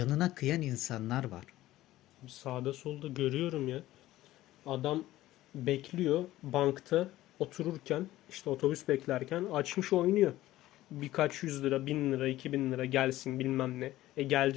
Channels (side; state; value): right; quieter; 15.6 dB